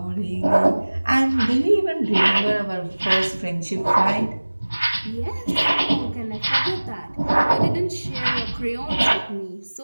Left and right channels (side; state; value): both; inverted; correlation -1.00